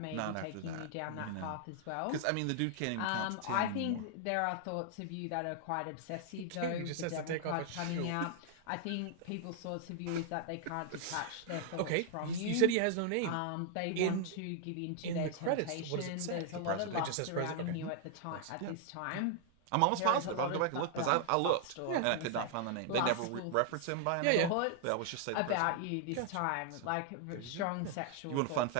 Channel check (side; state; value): both; different; correlation 0.00